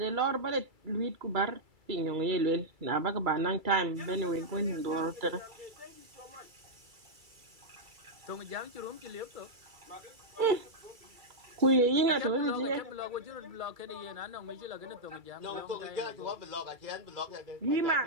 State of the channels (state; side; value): late; left; 2.3 ms